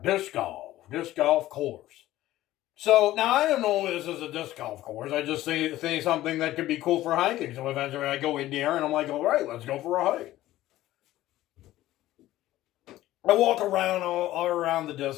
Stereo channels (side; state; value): right; quieter; 15.2 dB